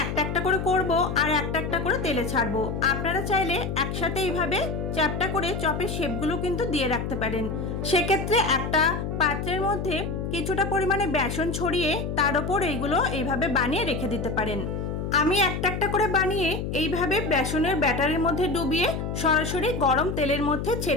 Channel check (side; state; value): left; noise; hum, 4 dB below the sound